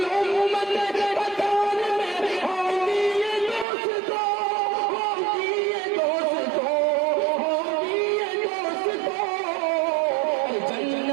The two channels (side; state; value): left; drops out; at 3.7 s